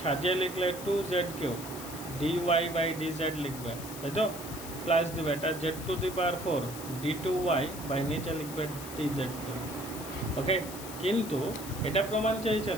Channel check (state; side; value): noise; left; hiss, 12 dB below the sound